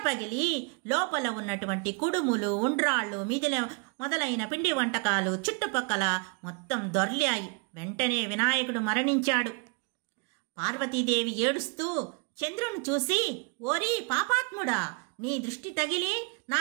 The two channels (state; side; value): quieter; left; 33.0 dB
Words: పగిలి లోపల ఉన్నటువంటి కుడుములు, ఉండ్రాళ్ళు, మొదలైన పిండి వంటకాలు చుట్టుపక్కల మొత్తం దొర్లాయి. వెంటనే వినాయకుడు మరణించాడు. పార్వతీదేవి ఏడుస్తూ చంద్రుని చూసి, ఓరి పాపాత్ముడా, నీ దృష్టి తగిలి నా